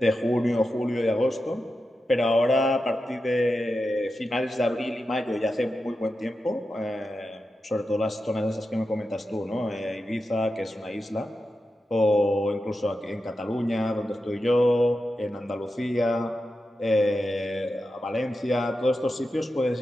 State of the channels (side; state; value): both; normal; correlation 0.90